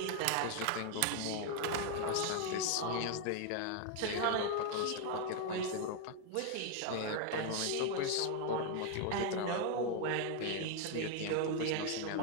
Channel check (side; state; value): both; different; correlation 0.01